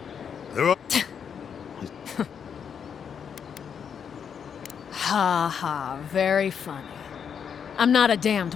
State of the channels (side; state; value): right; quieter; 7.4 dB